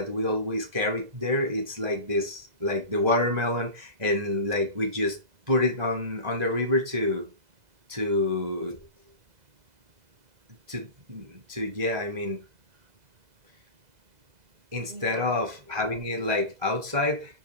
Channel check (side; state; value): left; late; 2.0 ms